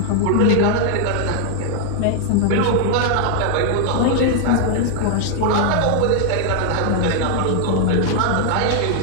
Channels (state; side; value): different; both; correlation 0.00